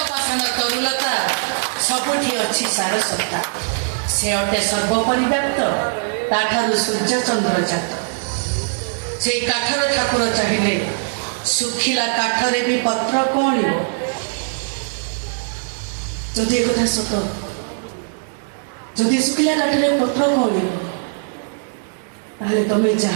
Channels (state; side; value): silent; left; digital silence